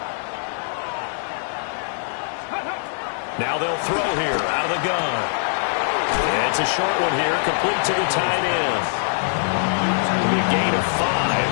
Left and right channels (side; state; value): right; silent; digital silence